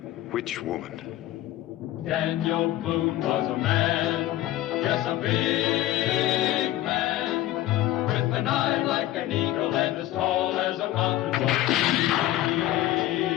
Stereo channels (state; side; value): quieter; right; 14.4 dB